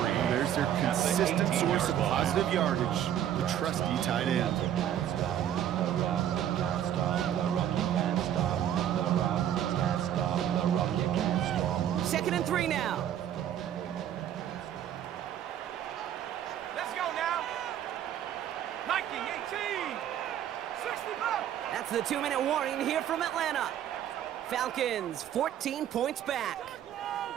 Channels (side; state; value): left; quieter; 10.6 dB